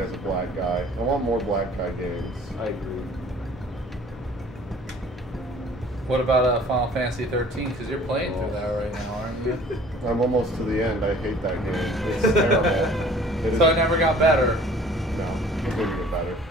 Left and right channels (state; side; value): normal; both; correlation 0.51